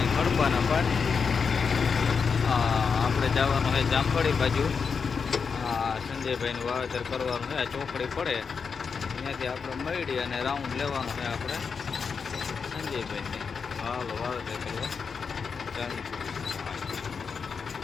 ખડબાના પાટ. આપણે જવાનું છે જામવાળી બાજુ. સંજયભાઈનું વાવેતર કરવાનું છે. ચોકડી પડે ત્યાંથી આપણે મળી અને રાઉન્ડ લેવાનું છે આપણે સંજયભાઈને. હાલો વાવેતર કરવા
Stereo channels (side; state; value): right; quieter; 5.7 dB